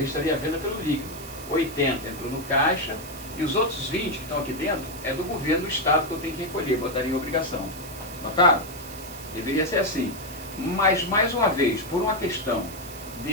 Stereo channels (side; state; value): right; noise; hiss, 14 dB below the sound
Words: a venda pelo líquido. 80 entrou no caixa, e os outros 20 que estão aqui dentro é do governo do estado que eu tenho que recolher, botaria em obrigação. Notaram? Deveria ser assim. Mas, mais uma vez, por uma questão